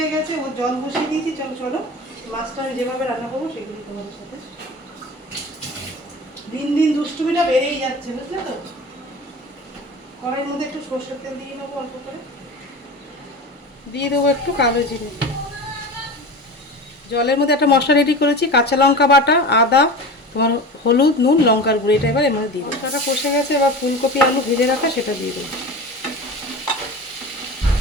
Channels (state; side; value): normal; both; correlation 0.31